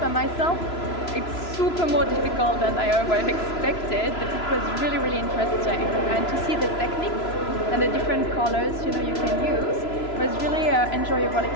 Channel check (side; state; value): right; late; 3.0 ms